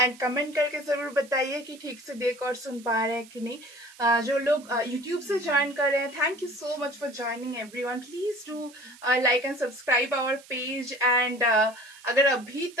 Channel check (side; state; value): right; noise; hiss, 22 dB below the sound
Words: कमेंट करके जरूर बताइए कि ठीक से देख और सुन पा रहे हैं कि नहीं। जो लोग यूट्यूब से ज्वाइन कर रहे हैं, thank you so much for joining everyone. Please do like and subscribe our page and अगर अभी